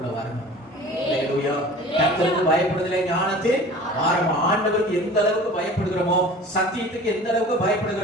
வரணும். அல்லேலூயா. கர்த்தருக்கு பயப்படுதலே ஞானத்தின் ஆரம்பம். ஆண்டவருக்கு எந்த அளவுக்கு பயப்படுகிறோமோ, சத்தியத்துக்கு எந்த அளவுக்கு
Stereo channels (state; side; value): normal; both; correlation 0.42